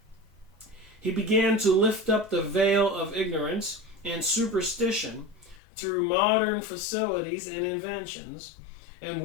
he began to lift up the veil of ignorance and superstition through modern facilities and inventions, and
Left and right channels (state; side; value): drops out; right; at 5.6 s